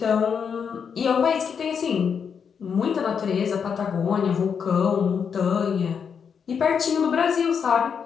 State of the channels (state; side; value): quieter; right; 6.8 dB